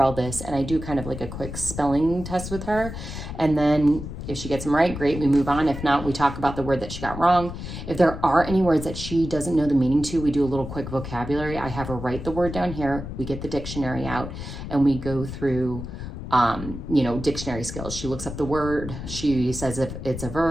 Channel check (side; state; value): left; noise; rumble, 9 dB below the sound